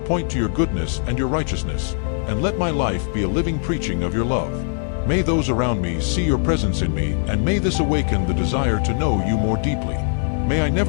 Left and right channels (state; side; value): silent; right; 60 dB below the other